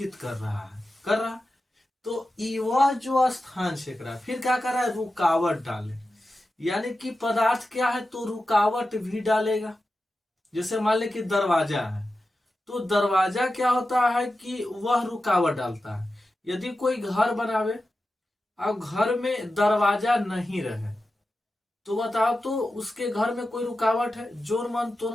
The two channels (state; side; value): normal; both; correlation 0.92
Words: कर रहा है, कर रहा है। तो वह जो स्थान छेक रहा है, फिर क्या कर रहा है, रुकावट डाले, यानी कि पदार्थ क्या है तो रुकावट भी डालेगा। जैसे मान ले कि दरवाजा है, तो दरवाजा क्या होता है कि वह रुकावट डालता है। यदि कोई घर बनावे, अब घर में दरवाजा नहीं रहे, तो बताओ तो उसके घर में कोई रुकावट है, जोर मन